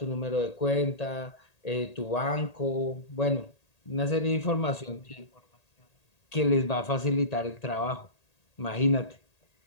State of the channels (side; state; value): right; late; 1.8 ms